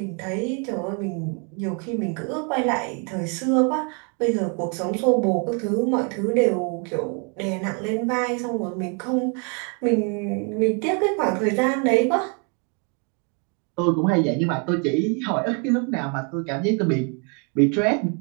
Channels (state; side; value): quieter; left; 37.0 dB